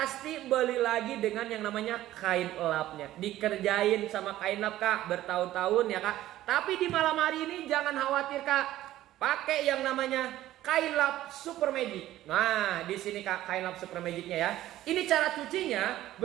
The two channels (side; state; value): left; quieter; 14.3 dB